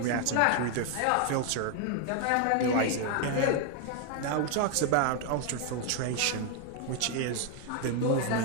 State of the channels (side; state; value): both; different; correlation 0.01